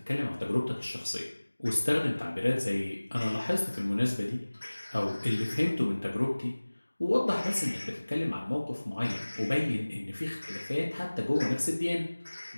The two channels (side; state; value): both; inverted; correlation -1.00